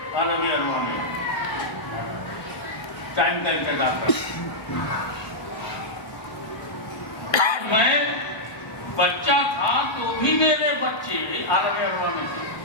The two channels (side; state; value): right; late; 1.3 ms